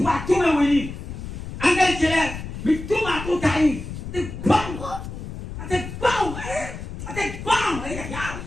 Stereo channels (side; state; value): left; noise; rumble, 9 dB below the sound